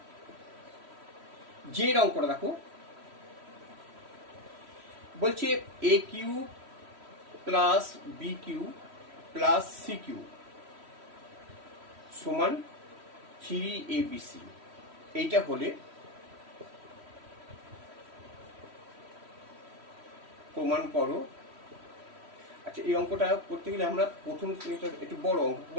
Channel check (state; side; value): late; left; 3.1 ms